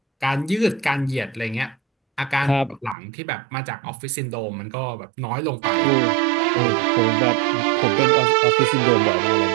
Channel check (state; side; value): drops out; left; at 3.0 s